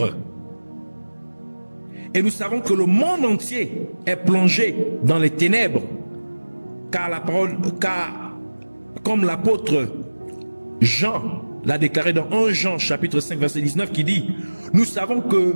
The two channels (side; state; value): both; inverted; correlation -1.00